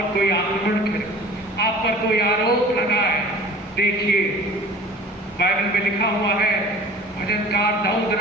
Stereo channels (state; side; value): normal; both; correlation 0.43